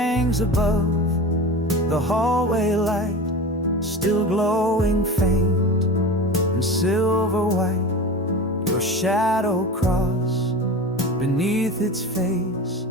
above the hallway light, still glowing faint and silver white. Your shadow crossed beneath its face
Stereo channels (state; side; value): normal; both; correlation 0.30